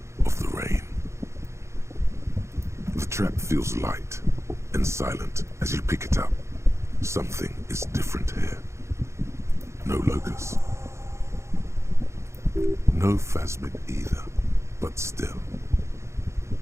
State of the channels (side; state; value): left; late; 0.14 ms